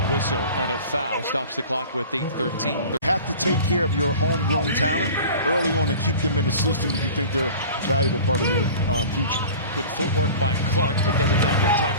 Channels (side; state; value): both; inverted; correlation -0.40